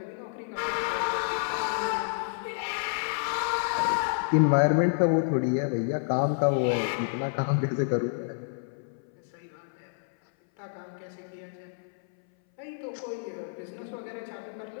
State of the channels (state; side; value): silent; right; 59 dB below the other